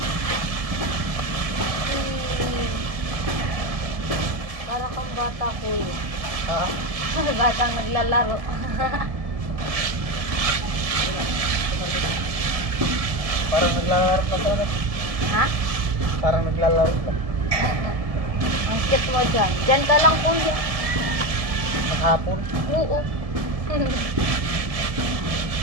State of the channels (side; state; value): left; late; 1.7 ms